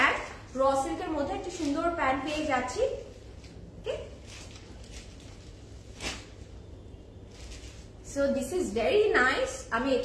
raw সিল্কের মধ্যে একটা সুন্দর প্যান্ট পেয়ে যাচ্ছি। Okay, so this is very nice. আমি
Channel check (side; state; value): both; identical; correlation 1.00